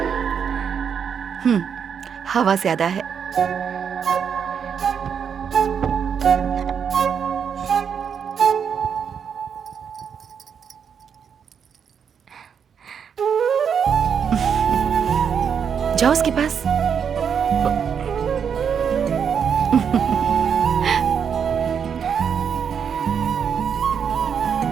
हवा ज्यादा है। जाओ उसके पास।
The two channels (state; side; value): quieter; left; 7.3 dB